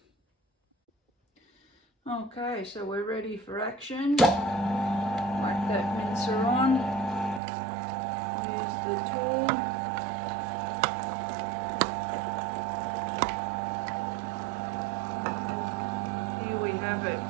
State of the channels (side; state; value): left; drops out; at 7.4 s